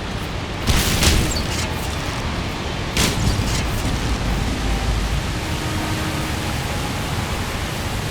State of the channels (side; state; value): both; identical; correlation 1.00